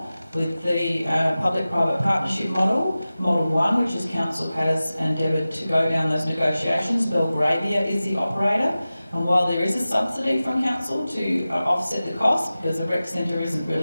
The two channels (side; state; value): both; inverted; correlation -0.96